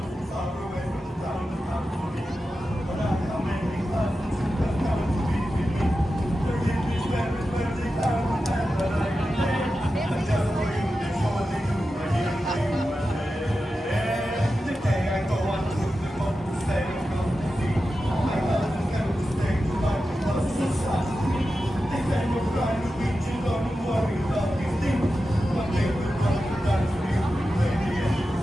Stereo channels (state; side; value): normal; both; correlation 0.92